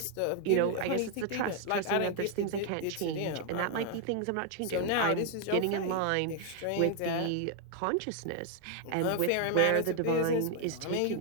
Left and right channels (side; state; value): both; different; correlation 0.00